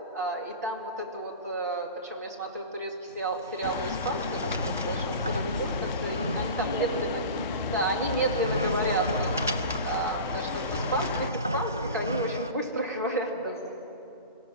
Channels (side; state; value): both; inverted; correlation -0.34